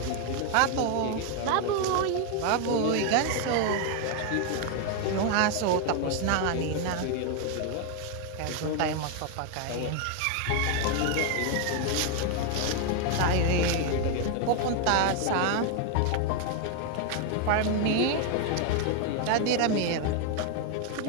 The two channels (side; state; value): both; different; correlation 0.01